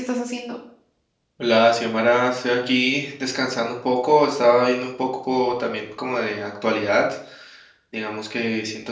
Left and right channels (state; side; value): identical; both; correlation 1.00